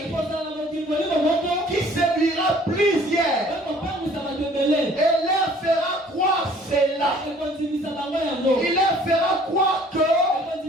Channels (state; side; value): normal; both; correlation 0.54